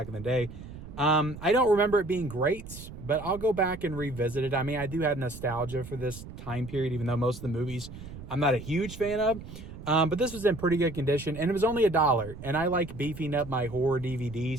in the day. I don't remember it being great, but I'll go back and revisit it. I mean, I do have nostalgia for this time period, even though most of the movies I'm not a huge fan of. But this was in pretty good condition, and it was only $1. And I like beefing up my horror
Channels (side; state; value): right; noise; rumble, 13 dB below the sound